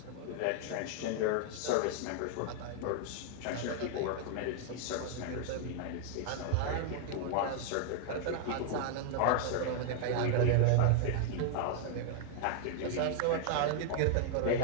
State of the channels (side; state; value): both; different; correlation 0.00